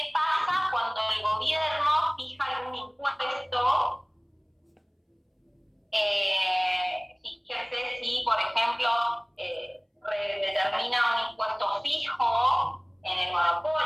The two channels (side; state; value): both; identical; correlation 1.00